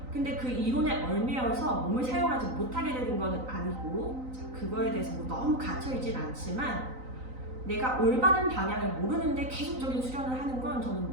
근데 그 이론에 얽매여서 몸을 사용하지 못하게 되는 건 아니고 그거에 대해서 너무 갇혀있진 않지만 내가 올바른 방향을 모르는데 계속적인 수련을 하는 건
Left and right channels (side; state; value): left; late; 3.9 ms